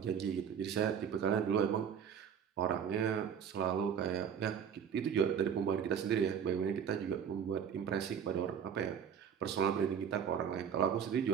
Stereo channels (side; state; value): left; quieter; 7.9 dB